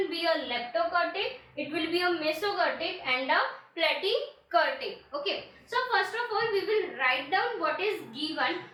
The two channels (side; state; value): both; identical; correlation 1.00